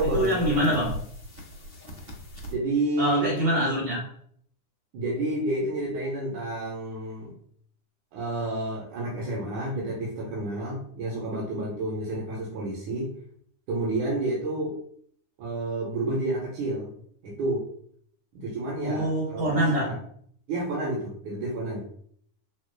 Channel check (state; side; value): late; left; 9.8 ms